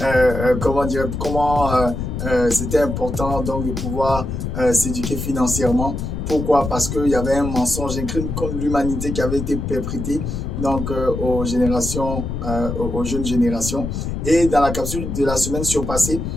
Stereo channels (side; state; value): left; noise; rumble, 4 dB below the sound